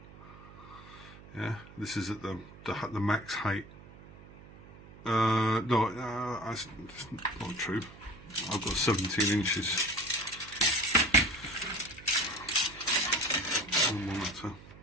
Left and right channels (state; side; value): noise; right; hum, 20 dB below the sound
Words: Yeah, this is at the max height. No, that's not true. I've got 17 inches.